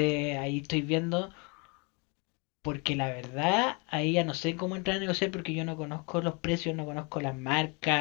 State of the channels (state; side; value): quieter; right; 32.0 dB